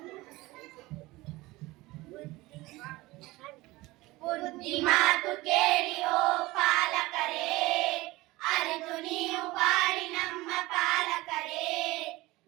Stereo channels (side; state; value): left; quieter; 20.2 dB